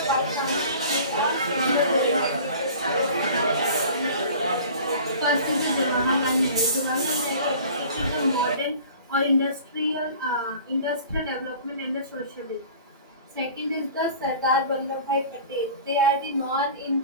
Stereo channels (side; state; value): both; inverted; correlation -0.44